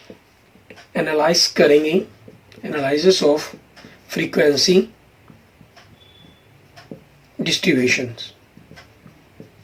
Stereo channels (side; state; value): both; identical; correlation 1.00